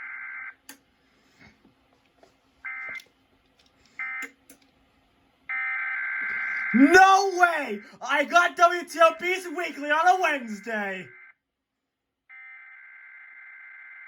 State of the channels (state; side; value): identical; both; correlation 1.00